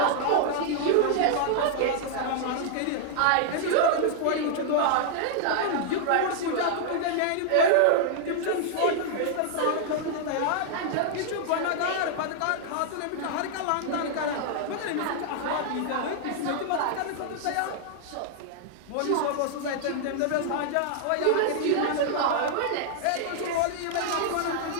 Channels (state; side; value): different; both; correlation -0.01